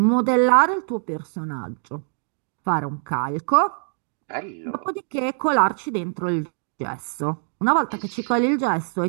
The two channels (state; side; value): silent; left; digital silence